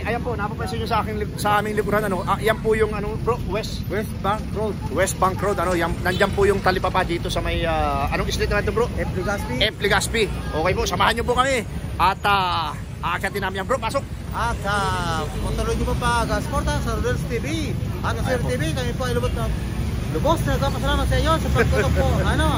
po, napapansin nyo sa aming lipunan, ano, yan po yung, ano, bro, West Bank Road. West Bank Road, ano, nandyan po yung talipapa dito sa may, anong street naman ito, bro? F. Legazpi. Okay po, samahan nyo po kami. At, aakyatin namin yan, bro, pasok. At, tuloy nyo po pa, suporta sa Rodels TV. At sa Rodels TV, kami po ay lubos na nagpapasalamat sa iyo sa pagtulong po.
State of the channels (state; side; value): identical; both; correlation 1.00